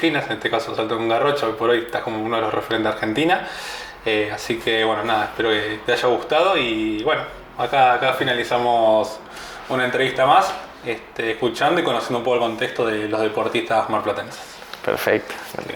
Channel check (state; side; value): identical; both; correlation 1.00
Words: en este caso salto en garrocha, hoy por hoy estás como uno de los referentes de Argentina. Así que bueno, nada, espero que te haya gustado y bueno, acá finalizamos una entrevista más, escuchando y conociendo un poco el contexto de los deportistas marplatenses. Perfecto. Así que